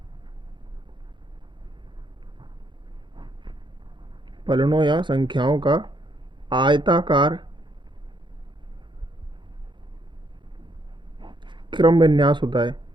संख्याओं का आयताकार क्रम विन्यास होता है।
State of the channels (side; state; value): left; late; 0.23 ms